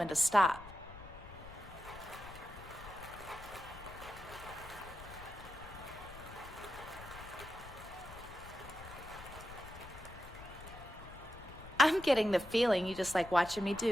to stop. I'm getting the feeling you just like watching me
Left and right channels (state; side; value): noise; left; rumble, 16 dB below the sound